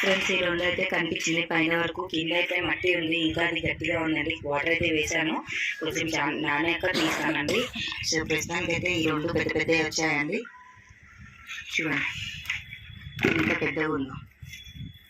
ఈ రెండు అయితే కనిపించింది పైన వరకు. కింద అయితే మట్టి ఉంది, ఇంకా అది గట్టిగా ఉందండి. వాటర్ అయితే వేసాను, కొంచెం నానాక తీస్తానండి. సో ప్రస్తుతానికి అయితే ఈ రెండు పెద్ద పెద్దవి వచ్చాయండి. చూడండి ఎంత పెద్దగా ఉందో.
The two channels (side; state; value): both; identical; correlation 1.00